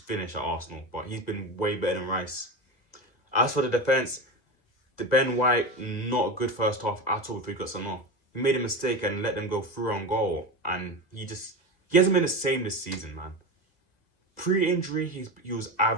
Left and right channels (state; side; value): late; right; 2.0 ms